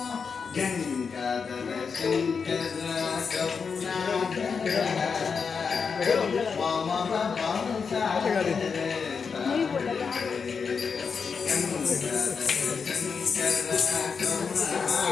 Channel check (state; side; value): quieter; right; 5.7 dB